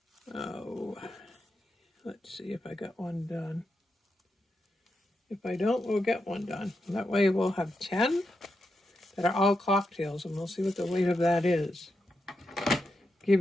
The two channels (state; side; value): normal; both; correlation 0.86